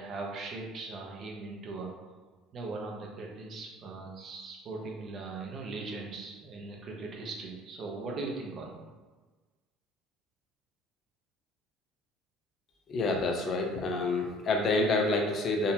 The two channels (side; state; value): both; normal; correlation 0.52